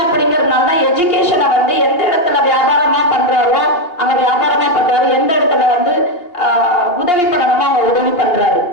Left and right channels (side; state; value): right; late; 2.8 ms